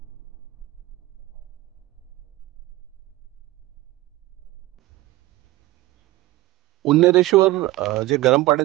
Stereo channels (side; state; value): left; quieter; 18.1 dB